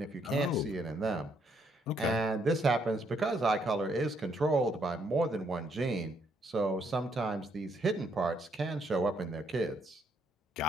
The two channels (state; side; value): normal; both; correlation 0.72